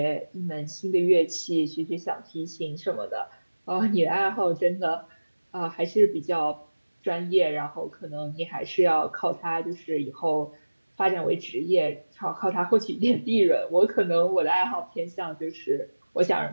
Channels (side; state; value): both; inverted; correlation -1.00